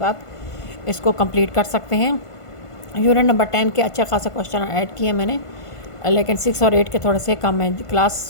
इसको कंप्लीट कर सकते हैं। यूनिट नंबर 10 के अच्छे खासा क्वेश्चन ऐड किए मैंने, लेकिन 6 और 8 के थोड़े से कम हैं।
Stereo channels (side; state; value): right; late; 1.5 ms